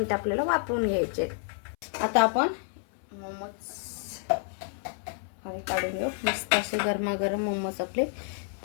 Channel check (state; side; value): silent; right; 58 dB below the other